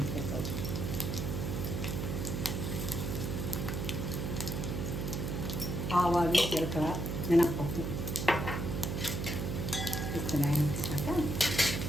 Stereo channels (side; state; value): right; noise; hum, 2 dB below the sound